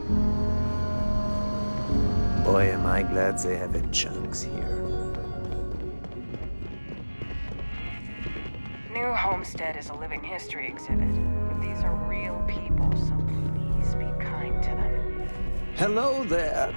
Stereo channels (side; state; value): both; inverted; correlation -1.00